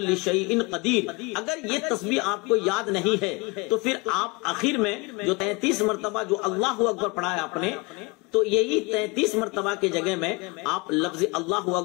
شیء قدیر، اگر یہ تسبیح آپ کو یاد نہیں ہے تو پھر آپ آخر میں جو 33 مرتبہ جو اللہ اکبر پڑھا ہے آپ نے، تو یہی 33 مرتبہ کے جگہ میں آپ لفظ اللہ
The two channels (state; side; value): quieter; right; 26.8 dB